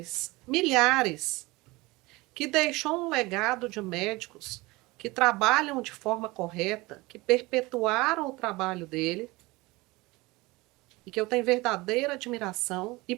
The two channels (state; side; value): quieter; left; 22.2 dB